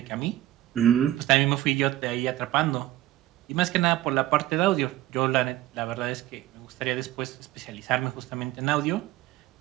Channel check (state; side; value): quieter; left; 14.9 dB